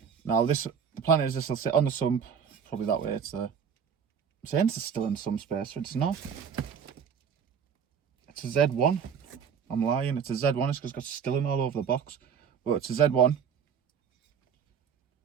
Now the plan is this will sit on the sump, probably that way. I'm saying it's still in some space, but it's not. It's a Z1. I'm lying, it's a Z1, it's because it's got Stirling all over the box. But it's a Z1.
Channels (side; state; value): left; quieter; 7.2 dB